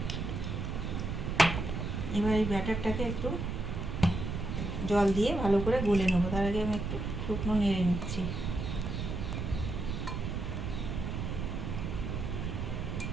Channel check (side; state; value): right; noise; rumble, 3 dB below the sound